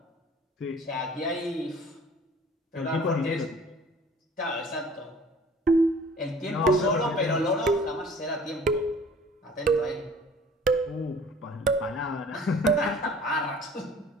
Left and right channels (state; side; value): normal; both; correlation 0.49